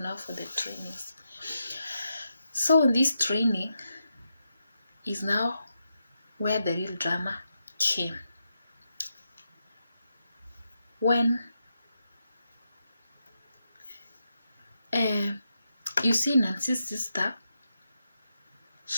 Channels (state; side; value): inverted; both; correlation -0.85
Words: trainings. So in this training is now where the real drama came. When you see Nancy's sister,